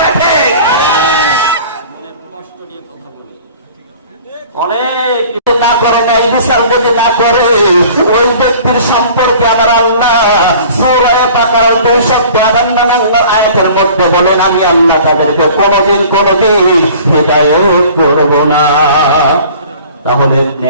কষ্ট নিয়ে কথা বলি। অনেক না করে নাই বিচার যদি না করে ওই ব্যক্তির সম্পর্কে আমার আল্লাহ সূরা বাকারা 252 আয়াতের মধ্যে বলেন, আমি আল্লাহ তাদেরকে কোনদিন হিদায়াত করব না। তাহলে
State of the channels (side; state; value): both; inverted; correlation -0.47